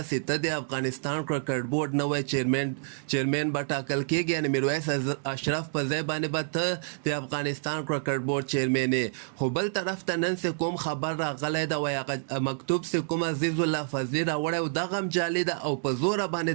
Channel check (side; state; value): left; silent; digital silence